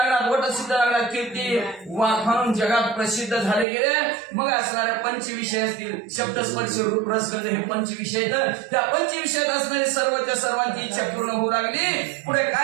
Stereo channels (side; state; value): left; drops out; at 3.7 s